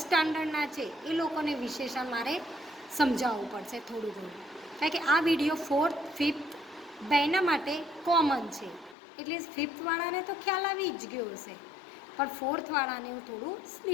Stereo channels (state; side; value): drops out; right; at 9.0 s